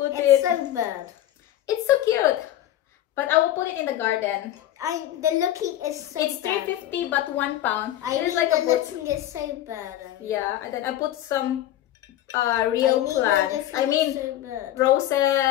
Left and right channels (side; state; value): right; quieter; 13.0 dB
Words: it. It's so bad. It's so cute, but I will put it in the garden. The looking is so it's bad. $3.50 but £1. It is like the looking is so bad. Yeah, and then I put some real plants. I mean so